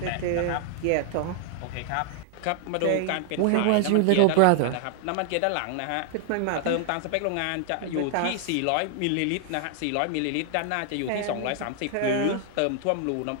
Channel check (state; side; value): different; both; correlation 0.00